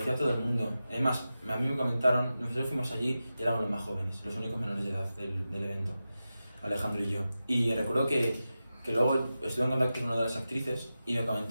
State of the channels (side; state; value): both; inverted; correlation -0.93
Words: todo el mundo, es más, a mí me comentaron, nosotros fuimos allí y éramos los más jóvenes, los únicos menores de edad del evento, Alejandro y yo, y recuerdo que luego estuve en contacto con una de las actrices y me